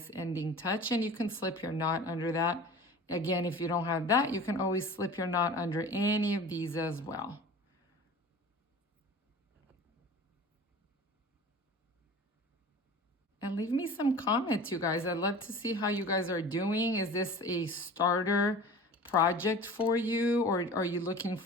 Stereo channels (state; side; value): normal; both; correlation 0.39